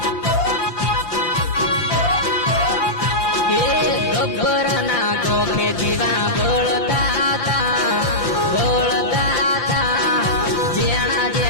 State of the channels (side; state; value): right; late; 5.9 ms